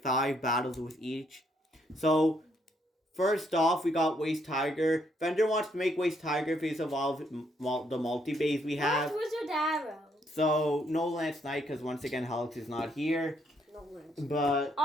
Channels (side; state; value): both; normal; correlation 0.72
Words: 5 battles with each. So, first off, we got Weiss Tiger. Fender wants to make Weiss Tiger face of all the multi-base we have. Where's Wizard Arrow? So, no Lance Knight, because once again, Helix is not here. No Lance. But